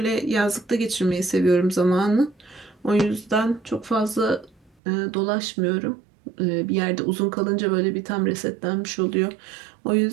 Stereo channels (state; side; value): drops out; left; at 4.7 s